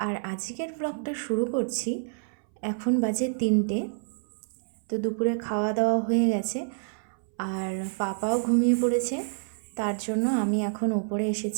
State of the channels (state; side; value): silent; left; 59 dB below the other